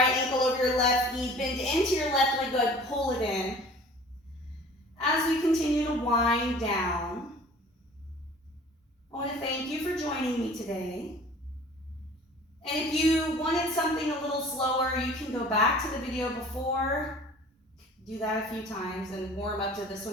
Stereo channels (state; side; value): normal; both; correlation 0.46